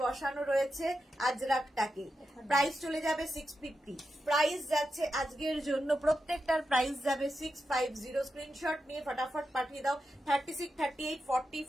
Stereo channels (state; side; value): normal; both; correlation 0.88